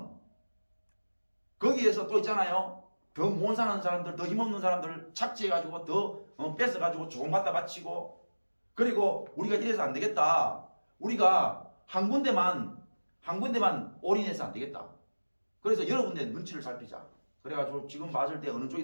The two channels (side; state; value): both; inverted; correlation -1.00